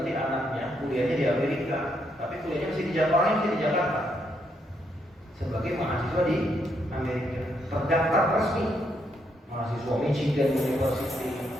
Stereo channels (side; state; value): both; normal; correlation 0.76